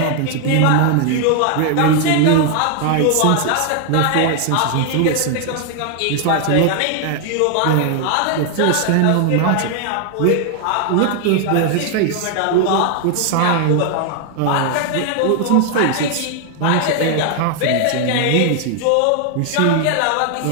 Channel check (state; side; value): different; both; correlation 0.00